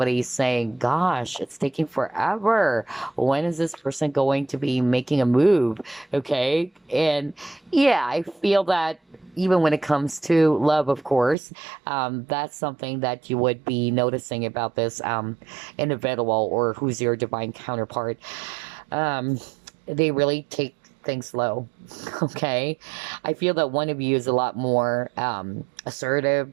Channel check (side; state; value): left; drops out; at 11.4 s